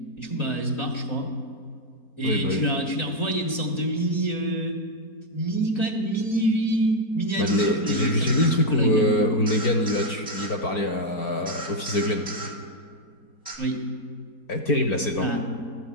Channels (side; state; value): right; late; 4.3 ms